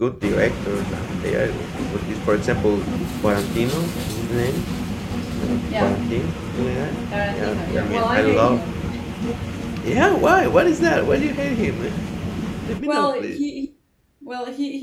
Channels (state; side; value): identical; both; correlation 1.00